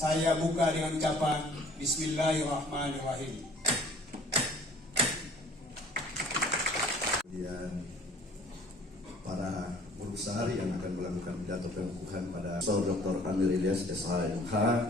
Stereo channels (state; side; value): normal; both; correlation 0.52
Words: buka dengan ucapan Bismillahirrahmanirrahim. Kemudian para guru besar yang akan melakukan pidato pengukuhan pada Profesor Dr. Amir Ilyas SHMH,